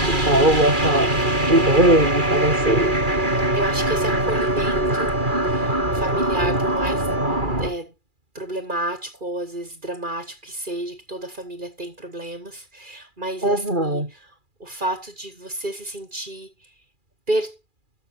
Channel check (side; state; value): left; late; 2.4 ms